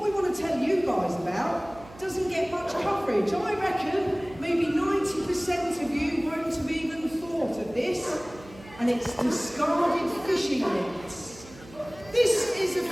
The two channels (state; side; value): noise; right; hum, 20 dB below the sound